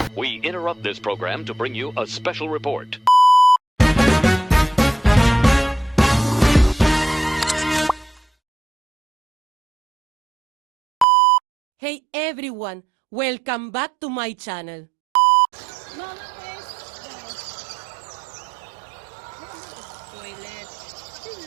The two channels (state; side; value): drops out; left; at 11.1 s